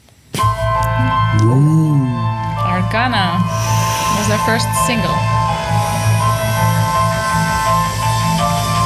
Arcana was our first single.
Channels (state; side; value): identical; both; correlation 1.00